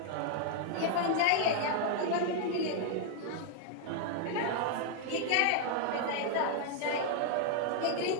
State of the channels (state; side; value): different; both; correlation 0.00